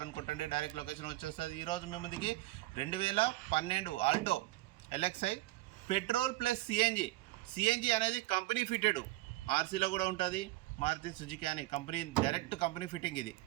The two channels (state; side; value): quieter; left; 18.3 dB